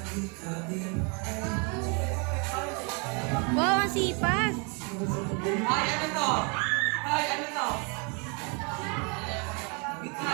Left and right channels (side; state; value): left; quieter; 34.5 dB